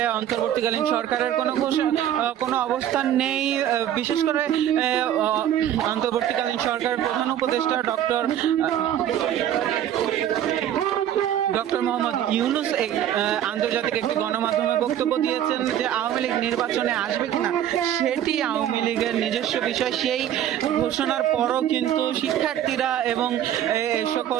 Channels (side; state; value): left; quieter; 11.0 dB